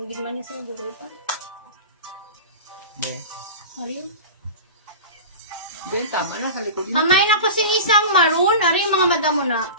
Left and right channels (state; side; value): inverted; both; correlation -0.31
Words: Hindi man niya siguro pa. Yeah. Hari yun. Then, tama na, sa likod na. Pamain ako si isang maroon. Ari yung mga madam mo na.